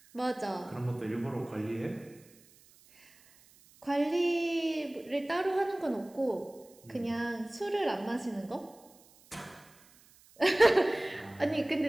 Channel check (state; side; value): noise; right; hiss, 27 dB below the sound